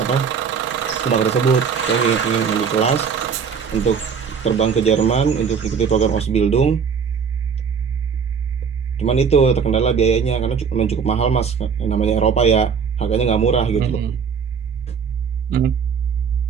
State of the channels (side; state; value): left; quieter; 6.3 dB